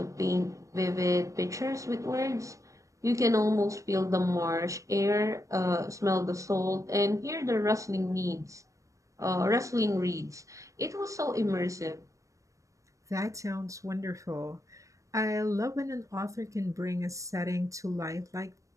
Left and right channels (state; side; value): late; left; 0.16 ms